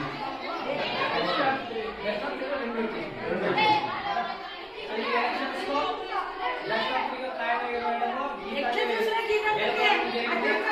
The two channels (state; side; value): identical; both; correlation 1.00